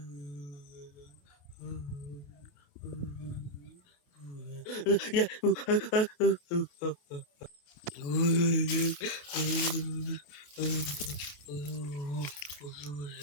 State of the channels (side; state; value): right; late; 28 ms